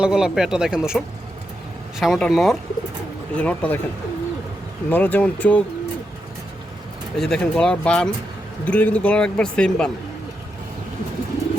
গলা পেয়ারটা দেখেন দর্শক, সামনেটা নর। এই যে নরটা দেখেন, নরের যেমন চোখ, এই যে দেখেন গলার বান, দুটোর কিন্তু গলার একবার সেম বান।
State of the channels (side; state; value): both; normal; correlation 0.84